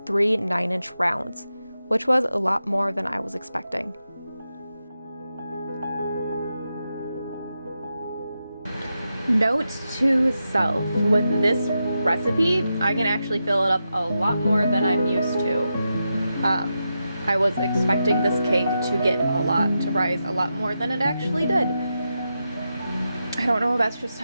3 9-inch rounds, which was a lot more than I was expecting. Note to self, with this recipe, I can actually fill it up a lot more than I'm used to. I was expecting this cake to rise a lot more than it actually did. I don't know if that's just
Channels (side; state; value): both; inverted; correlation -0.88